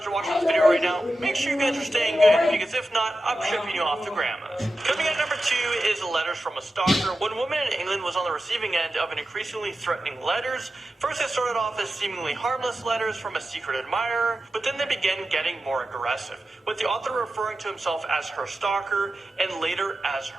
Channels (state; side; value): normal; both; correlation 0.92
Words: or watching this video right now, make sure you guys are staying good, because if not, I'm shipping you off to grandma's. Coming in at number 2 is letters from a stalker. One woman in England was on the receiving end of an increasingly threatening letters. First, it started off as seemingly harmless letters from a secret admirer, but then they began getting more aggressive, with the author referring to himself as her stalker and later as